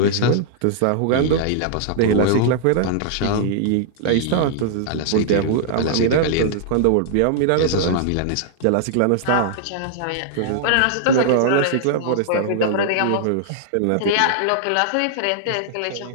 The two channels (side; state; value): both; different; correlation -0.01